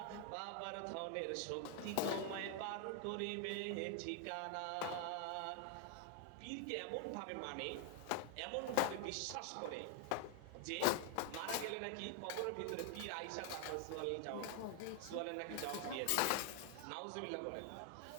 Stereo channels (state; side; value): different; both; correlation 0.00